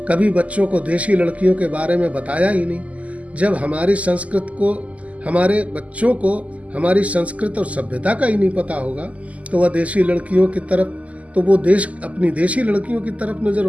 कभी बच्चों को देशी लड़कियों के बारे में बताया ही नहीं। जब हमारे बच्चों को हमारी संस्कृत और सभ्यता का ही नहीं पता होगा तो वह देशी लड़कियों की तरफ अपनी देशी लड़कियों की तरफ नजर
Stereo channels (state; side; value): late; left; 0.070 ms